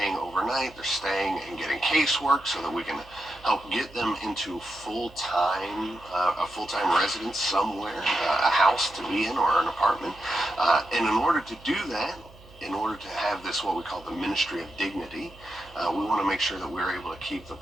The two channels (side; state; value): right; noise; hum, 22 dB below the sound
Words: overnight, they're staying and getting casework so that we can help get them into a full-time residence somewhere, a house to be in or an apartment. And in order to do that, in order to have this, what we call the Ministry of Dignity, we want to make sure that we're able to keep the